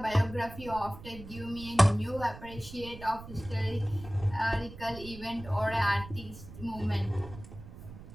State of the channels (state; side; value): noise; right; rumble, 14 dB below the sound